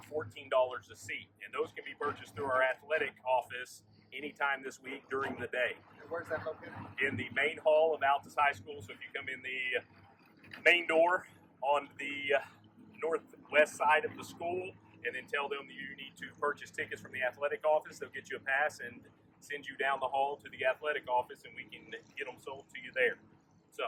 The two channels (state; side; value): identical; both; correlation 1.00